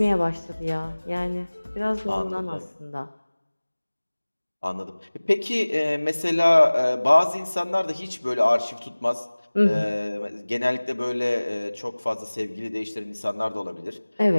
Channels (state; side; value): inverted; both; correlation -1.00